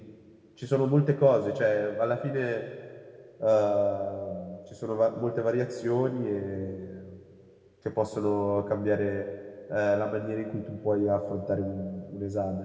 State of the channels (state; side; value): identical; both; correlation 1.00